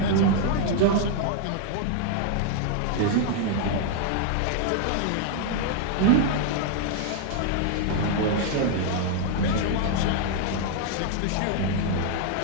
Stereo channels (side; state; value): both; different; correlation 0.00